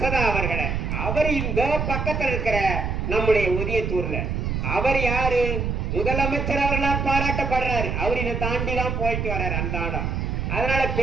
அவர்களை. அவர் இந்த பக்கத்தில் இருக்கிற நம்முடைய ஒதியத்தூர்ல அவர் யாரு? முதலமைச்சர் அவர்களால் பாராட்டப்படுறாரு. அவர் இதை தாண்டி தான் போயிட்டு வர்றாரு அந்த ஆடம். அதனால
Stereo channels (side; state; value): right; noise; rumble, 1 dB below the sound